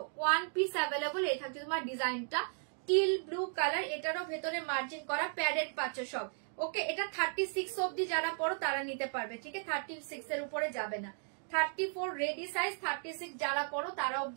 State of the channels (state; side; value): silent; left; 54 dB below the other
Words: ওয়ান পিস অ্যাভেলেবল। এই থাকছে তোমার ডিজাইনটা টিল ব্লু কালার। এটারও ভেতরে মার্জিন করা, প্যাডেড পাচ্ছ সব। ওকে এটা 36 অব্দি যারা পড়ো তারা নিতে পারবে। ঠিক আছে 36 এর উপরে যাবে না। 34 রেডি সাইজ, 36 যারা পড়ো তারা